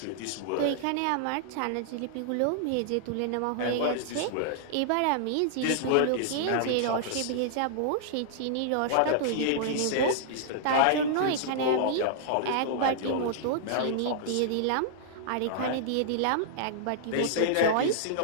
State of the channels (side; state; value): both; different; correlation -0.01